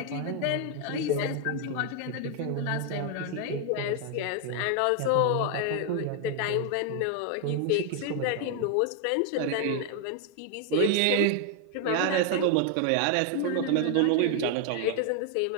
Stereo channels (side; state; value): both; different; correlation 0.01